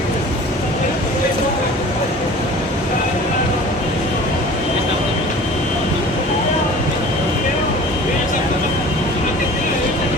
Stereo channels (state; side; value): normal; both; correlation 0.43